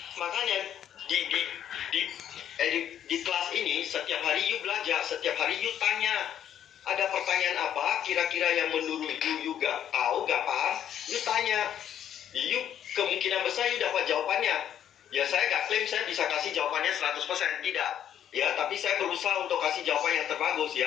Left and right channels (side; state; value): right; quieter; 10.0 dB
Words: Makanya di kelas ini setiap hari you belajar, setiap hari you tanya. Ada pertanyaan apa kira-kira yang menurut you gak tahu, gak paham, you tanya. You kemungkinan besar you dapat jawabannya. Ya saya gak klaim klaim saya bisa kasih jawabannya 100%, tidak. Ya, tapi saya berusaha untuk kasih jawaban yang terbagus